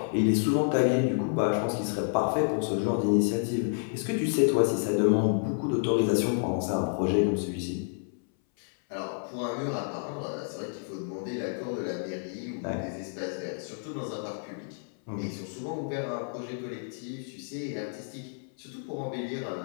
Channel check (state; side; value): silent; right; 58 dB below the other